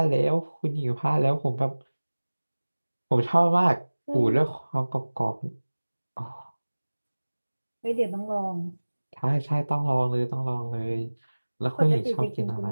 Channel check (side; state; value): both; inverted; correlation -1.00